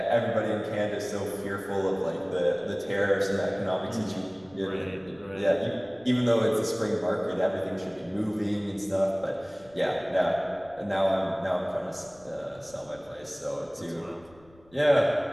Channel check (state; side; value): noise; left; rumble, 27 dB below the sound